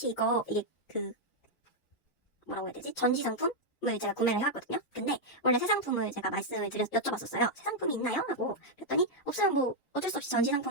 이게 뭐라고 해야 되지? 전시 상품을 제가 구매를 해왔거든요. 근데 원래 새 상품을 제가 말씀을 여쭤봤었어요. 새 상품이 있나요? 하고 그랬더니 없으면 뭐 어쩔 수 없이 전시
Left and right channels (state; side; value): late; right; 6.1 ms